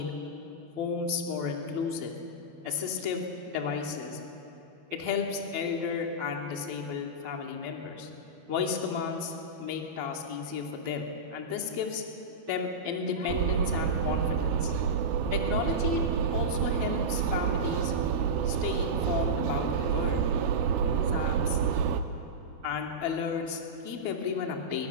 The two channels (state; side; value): late; left; 12 ms